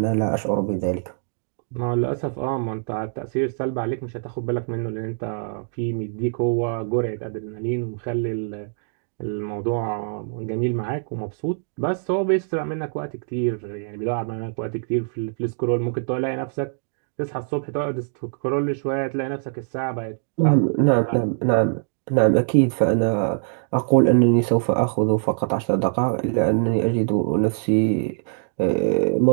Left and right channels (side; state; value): left; silent; digital silence